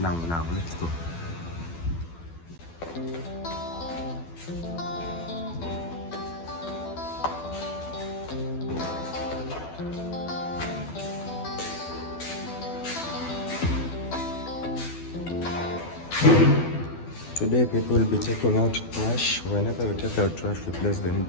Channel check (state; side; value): late; right; 12 ms